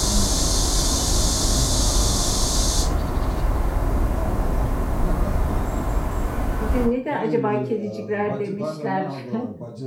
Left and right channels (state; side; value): identical; both; correlation 1.00